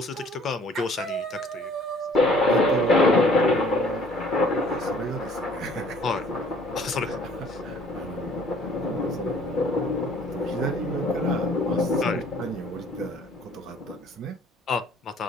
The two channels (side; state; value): both; normal; correlation 0.55